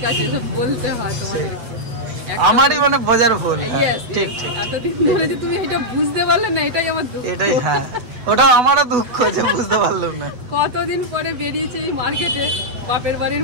আছে, সব বলতে হয় তোমাদেরকে। আমারই মানে বোঝার ভুল। Yes, ঠিক yes. ঠিক, এতদিন ধরে যে তুমি এটা বুঝতে পারলে না, এটাই আমার দুঃখ। এটাই, হ্যাঁ ওটা আমারও দুঃখ যে বুঝতে পারলাম না। কতদিন পরে বেরিয়েছে এই মার্কেটে, বাপের বাড়ির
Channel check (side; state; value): left; late; 8.1 ms